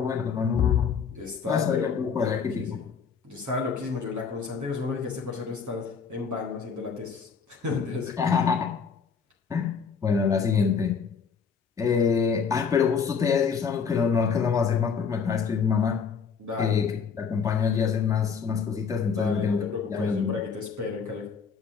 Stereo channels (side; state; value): right; quieter; 6.0 dB